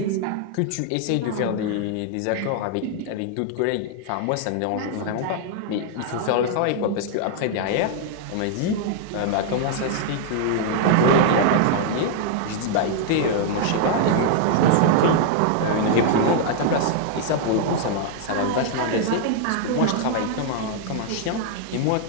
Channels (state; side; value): different; both; correlation 0.00